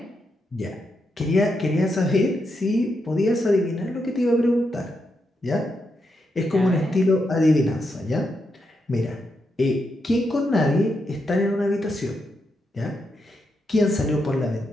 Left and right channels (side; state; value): both; normal; correlation 0.83